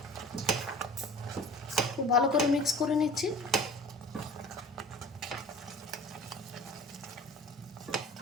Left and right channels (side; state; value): both; normal; correlation 0.42